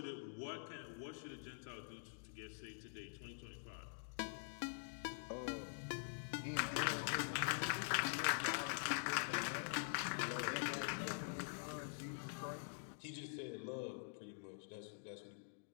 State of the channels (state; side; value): silent; right; digital silence